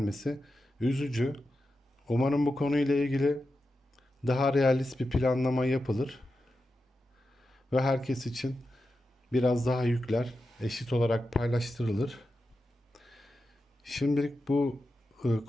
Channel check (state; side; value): normal; both; correlation 0.90